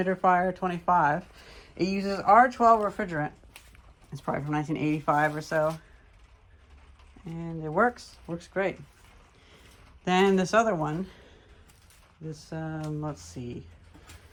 25. It uses R12 refrigerant. It's probably from 1985 or so. And it works great. Then this other one, this, let's see,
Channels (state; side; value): identical; both; correlation 1.00